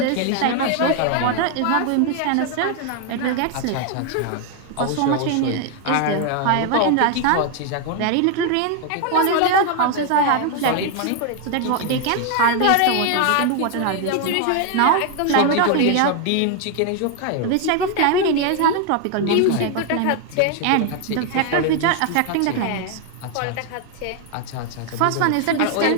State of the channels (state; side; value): different; both; correlation 0.00